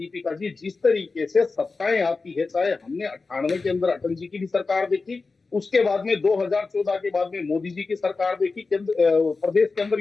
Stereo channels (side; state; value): right; quieter; 4.1 dB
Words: जी, जिस तरीके से सत्ताएं आती है, चाहे हमने 98 के अंदर अटल जी की भी सरकार देखी, उसके बाद में 2014 के बाद में मोदी जी की सरकार देखी, प्रदेश के अंदर